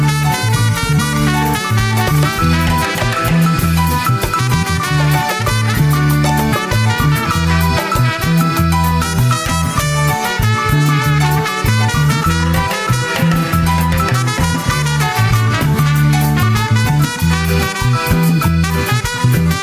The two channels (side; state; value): both; identical; correlation 1.00